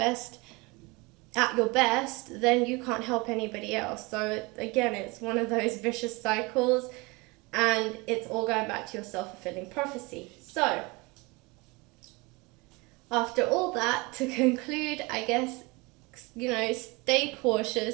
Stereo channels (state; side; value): quieter; left; 25.7 dB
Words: then you can't help anybody else. So again, it's one of those vicious cycles, and it's all going back to your self-fulfilling prophecy. So after all that, to conclude, I guess, stay cautious.